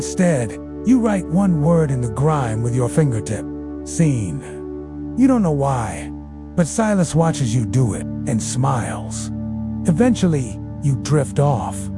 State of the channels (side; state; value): both; identical; correlation 1.00